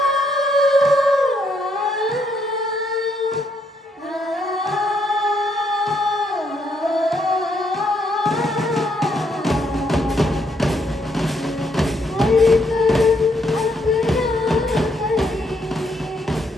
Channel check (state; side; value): normal; both; correlation 0.73